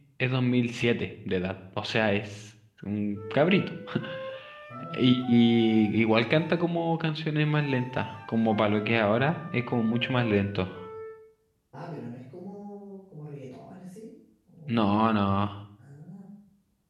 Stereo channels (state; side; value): identical; both; correlation 1.00